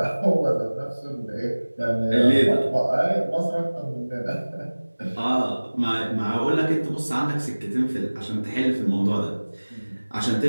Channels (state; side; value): inverted; both; correlation -1.00